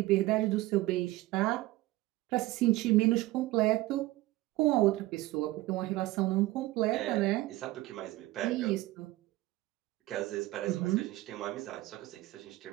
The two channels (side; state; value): left; quieter; 18.1 dB